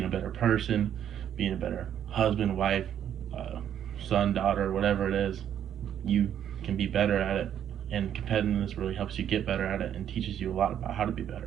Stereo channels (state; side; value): quieter; left; 9.8 dB